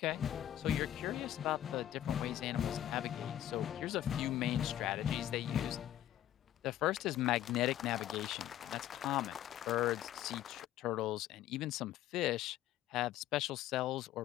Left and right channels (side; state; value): right; quieter; 12.3 dB